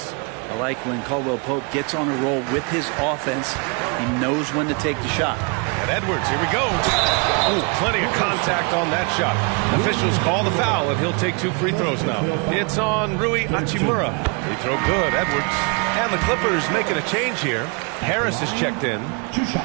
I like when Caldwell-Pope gets on a roll with his offense. He knows when to take the shot. And Edwards, here we go. Ooh, plenty of contact on that shot. Officials call the foul, and he'll take 2 free throws now. It's on Rui Hachimura. Free throw good, Edwards. And the Clippers making a change here. Harris is checked in.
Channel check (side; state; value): left; quieter; 33.3 dB